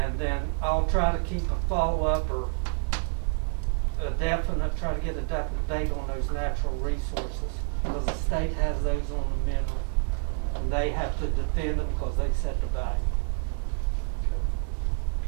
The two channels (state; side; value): silent; left; 59 dB below the other